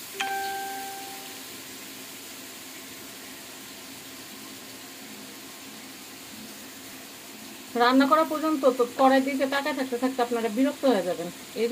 রান্না করা পর্যন্ত তো কড়াই দিকে তাকায় থাকতে থাকতে আপনারা বিরক্ত হয়ে যাবেন। এই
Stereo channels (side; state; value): both; identical; correlation 1.00